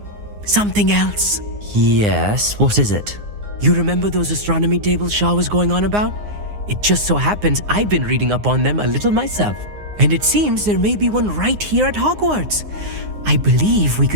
something else. Yes, what is it? You remember those astronomy tables Shaw was going on about? It just so happens I've been reading up on them a little myself. And it seems there may be one right here at Hogwarts. I believe we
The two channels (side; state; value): left; late; 9.7 ms